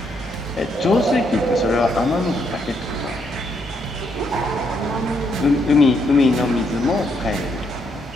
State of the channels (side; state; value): both; normal; correlation 0.75